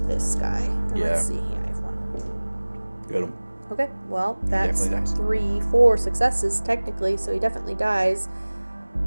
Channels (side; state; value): both; inverted; correlation -1.00